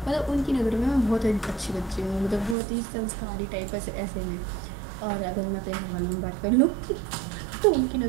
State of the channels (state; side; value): drops out; left; at 2.6 s